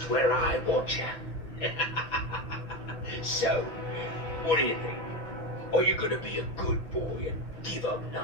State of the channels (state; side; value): late; right; 6.3 ms